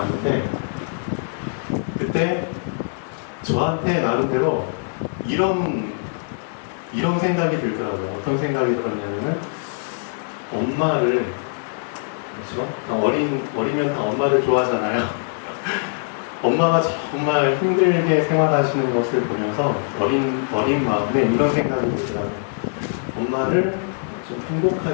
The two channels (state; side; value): silent; right; digital silence